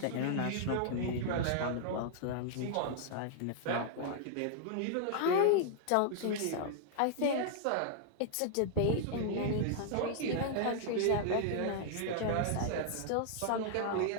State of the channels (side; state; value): both; different; correlation -0.01